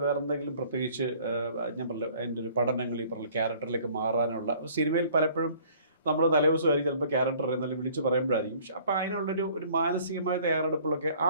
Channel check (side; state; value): both; inverted; correlation -0.55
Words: വേറെ എന്തെങ്കിലും പ്രത്യേകിച്ച് ഞാൻ പറഞ്ഞു അതിൻ്റെ ഒരു പഠനങ്ങൾ, ഈ പറഞ്ഞ ക്യാരക്ടറിലേക്ക് മാറാനുള്ള സിനിമയിൽ പലപ്പോഴും നമ്മൾ തലേദിവസമായിരിക്കും ചിലപ്പോൾ ക്യാരക്ടർ എന്നാലും വിളിച്ച് പറയുമ്പോഴായിരിക്കും. പക്ഷെ അപ്പോൾ അതിനുള്ളൊരു മാനസികമായ തയ്യാറെടുപ്പുകളൊക്കെ ആ